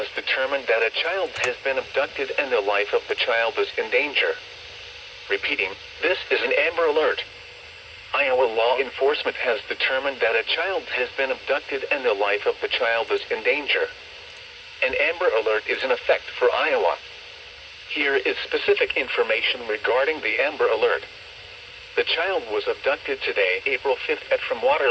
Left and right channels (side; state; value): both; identical; correlation 1.00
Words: determined that a child has been abducted and the life of the child is in danger. Repeating, this is an Amber Alert. Iowa law enforcement has determined that a child has been abducted and the life of the child is in danger. An Amber Alert is in effect for Iowa. Here is specific information regarding the Amber Alert. The child was abducted today, April 5th from